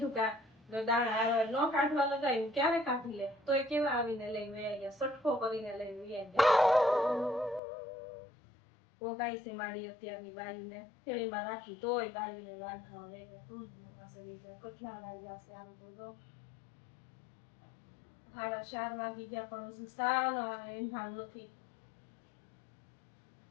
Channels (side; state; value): right; drops out; at 7.6 s